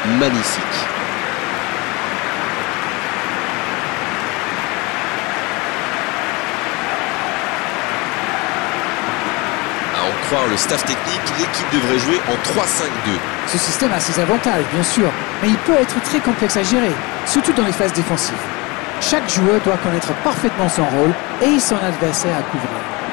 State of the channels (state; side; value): quieter; right; 25.8 dB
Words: Magnifique. À en croire le staff technique, l'équipe devrait jouer en 3-5-2. Ce système a ses avantages, bien sûr, mais il peut être très complexe à gérer, surtout dans les phases défensives. Chaque joueur doit connaître parfaitement son rôle et son adversaire à couvrir.